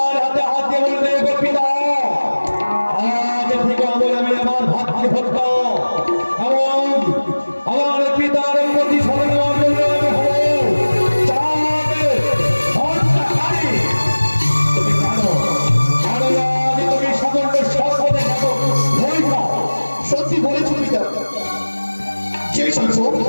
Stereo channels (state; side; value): inverted; both; correlation -1.00